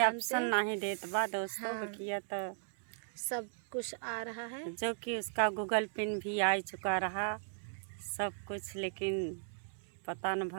ऑप्शन नहीं देत बा दोस्तों। हाँ, बकिया तो सब कुछ आ रहा है, जो कि उसका गूगल पिन भी आ चुका रहा सब कुछ, लेकिन पता न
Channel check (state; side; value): silent; left; digital silence